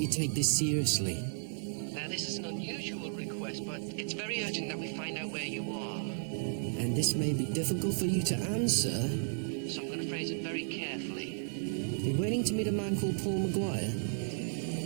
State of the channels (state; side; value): silent; left; digital silence